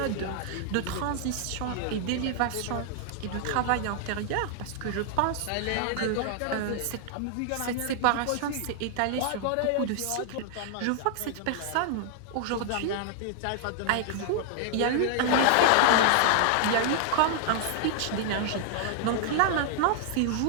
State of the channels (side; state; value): both; different; correlation -0.01